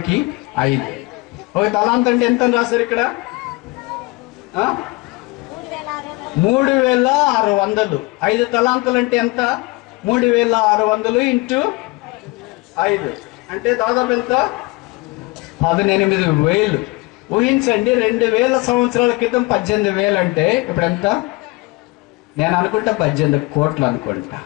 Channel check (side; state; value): right; quieter; 24.4 dB